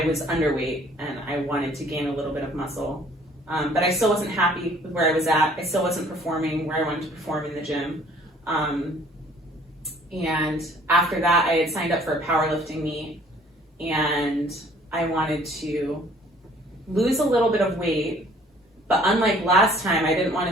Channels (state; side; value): normal; both; correlation 0.56